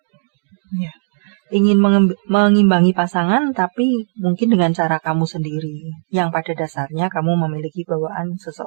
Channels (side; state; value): left; silent; digital silence